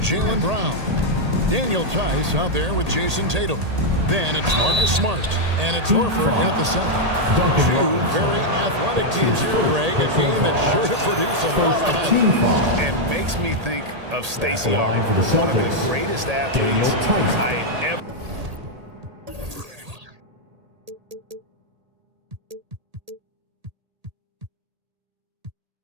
Brown. Daniel Tice out there with Jason Tatum. Then it's Marcus Smart. And it's Horford at the center. Two very athletic teams here, Greg. A game that's sure to produce a lot of highlights. And makes me think of Stacey Arnold, one of the greatest athletes I ever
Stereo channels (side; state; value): left; late; 1.8 ms